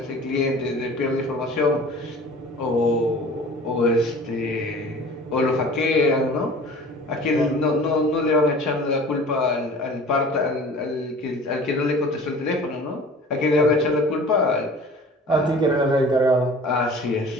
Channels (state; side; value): normal; both; correlation 0.44